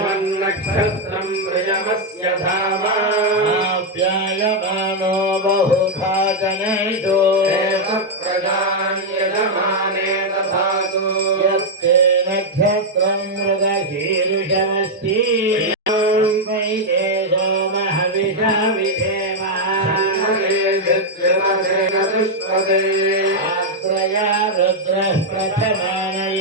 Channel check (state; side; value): normal; both; correlation -0.01